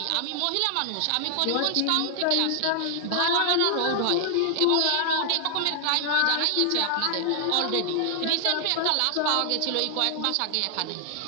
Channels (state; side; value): different; both; correlation -0.01